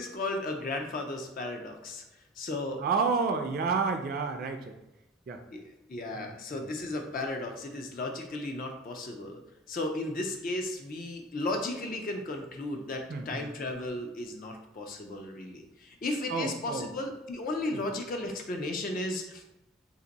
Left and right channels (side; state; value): both; normal; correlation 0.30